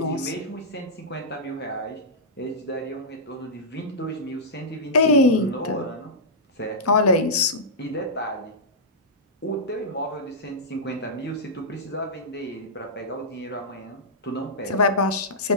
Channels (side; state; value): both; normal; correlation -0.13